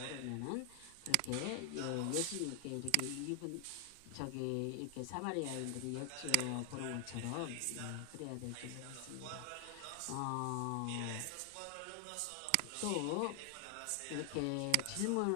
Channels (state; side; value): different; both; correlation 0.00